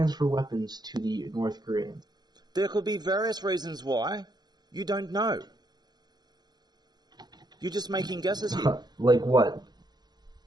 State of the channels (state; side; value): late; left; 0.20 ms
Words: weapons to the North Koreans? There could be various reasons why. You don't know. You're just making guesses here. Like what?